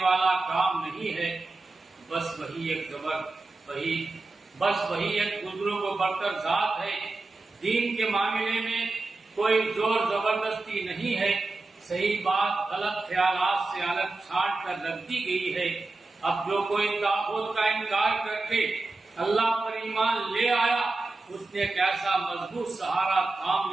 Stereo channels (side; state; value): left; quieter; 3.3 dB